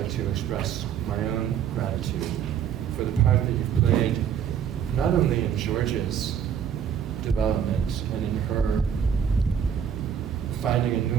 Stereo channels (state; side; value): quieter; left; 8.4 dB